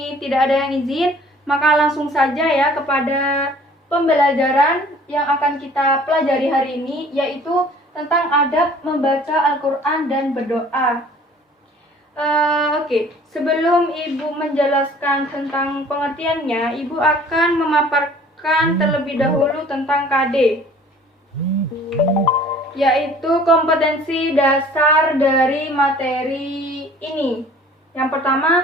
tidak ada yang izin, maka langsung saja ya kepada pembelajaran yang akan kita pelajari hari ini, yaitu tentang adab membaca Al-Quran dan berdoa. Oke, sebelum Ibu menjelaskan tentang pengertiannya, Ibu akan memaparkan terlebih dahulu tentang KD, yaitu kompetensi dasar dari materi ini. Yang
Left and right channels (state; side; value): normal; both; correlation 0.51